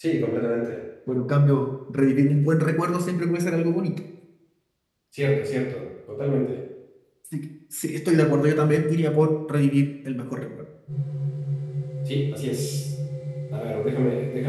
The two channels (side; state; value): both; identical; correlation 1.00